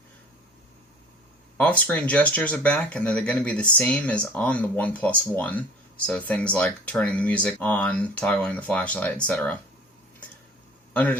Off-screen gestures are back, and they're going to be the same as on the OnePlus 1. So things like turning the music on, toggling the flashlight, etc. Under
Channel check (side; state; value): both; normal; correlation 0.47